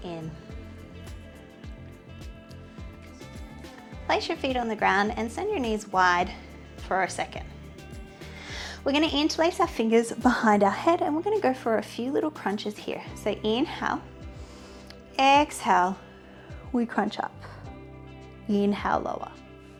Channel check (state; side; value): identical; both; correlation 1.00